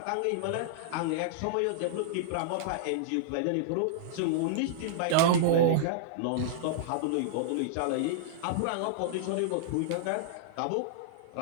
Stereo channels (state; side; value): different; both; correlation -0.02